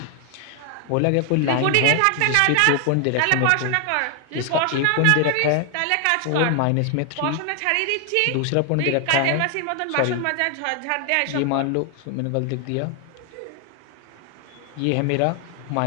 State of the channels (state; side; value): different; both; correlation 0.00